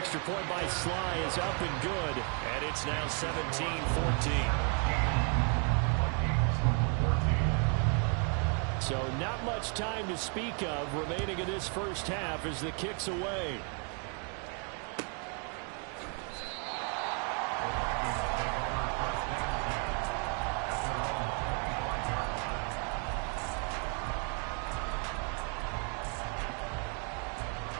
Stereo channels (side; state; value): left; quieter; 39.2 dB